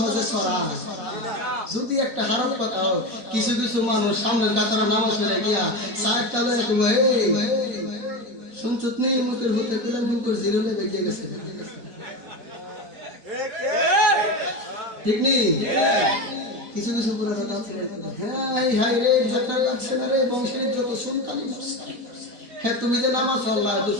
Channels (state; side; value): late; left; 4.1 ms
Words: ছড়া? যদি একটা হারাম কথা হোক, কিছু কিছু মানুষ সামনের কাতারে নামাজ পড়ে গিয়া সাইড চালে শুনছত নেই, মুখের হতে গেলে মুখের জিরো লেগে গিয়ে গেছে, ঠিক নেই? কিছু কিছু পুরা কথা আছে, হাই হাই রে ঝাঁটা লাগছে না রে, বংশের যত সুনকালি করছে। হ্যাঁ, তুমি যে নামাজ পড়লা তো